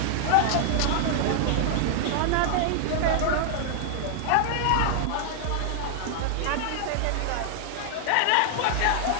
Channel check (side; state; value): both; different; correlation 0.00